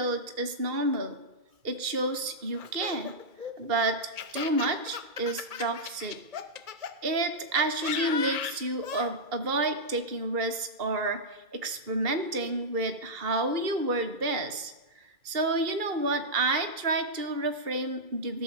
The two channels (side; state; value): left; late; 2.3 ms